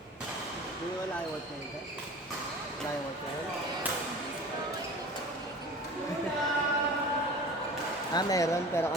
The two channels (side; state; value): both; normal; correlation 0.39